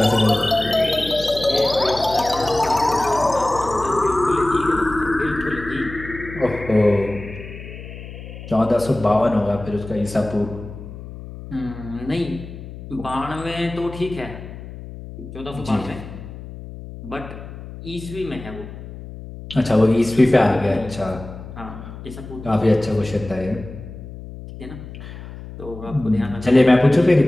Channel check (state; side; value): noise; left; hum, 13 dB below the sound